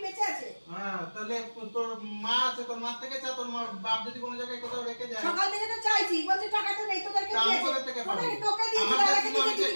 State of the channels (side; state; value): both; inverted; correlation -1.00